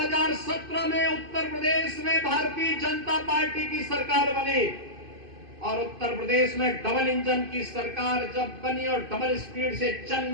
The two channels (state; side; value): late; left; 2.5 ms